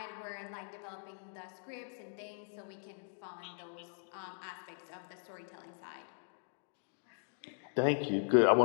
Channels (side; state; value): right; silent; digital silence